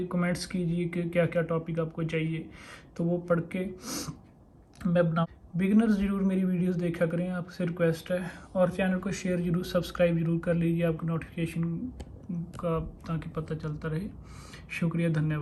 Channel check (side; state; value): both; identical; correlation 1.00